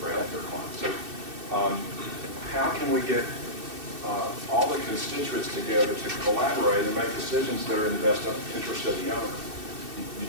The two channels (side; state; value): left; late; 2.7 ms